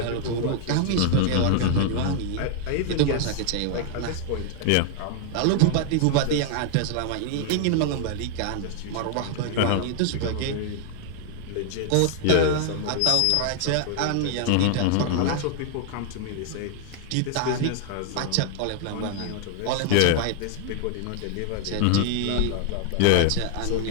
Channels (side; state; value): both; different; correlation 0.00